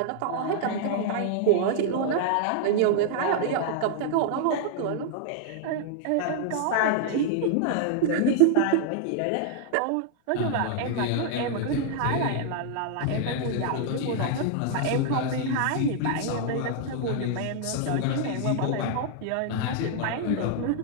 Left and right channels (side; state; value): both; different; correlation -0.01